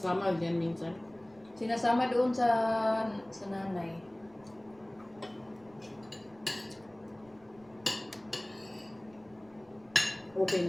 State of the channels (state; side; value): noise; right; rumble, 28 dB below the sound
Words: dyan minsan. Sinasama doon sa nanay.